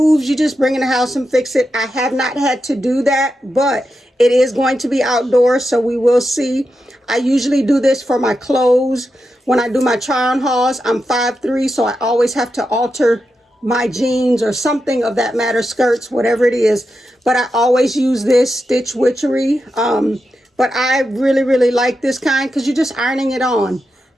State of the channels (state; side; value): normal; both; correlation 0.88